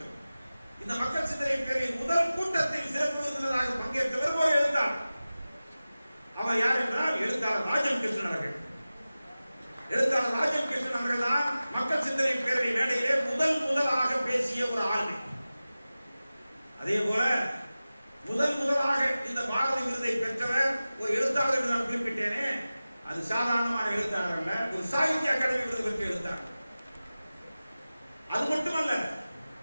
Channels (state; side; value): inverted; both; correlation -0.96